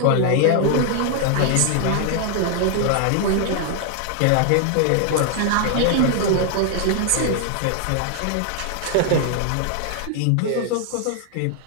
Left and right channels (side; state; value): both; different; correlation 0.00